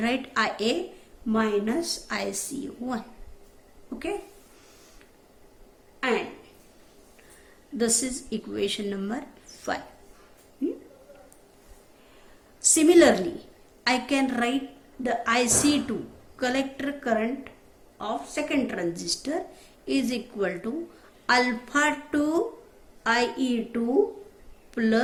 IA minus IC1. Okay, and this is equation number 5. Similarly I can write the IC2, collector current of second transistor, is equal to alpha 2 IE2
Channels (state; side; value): identical; both; correlation 1.00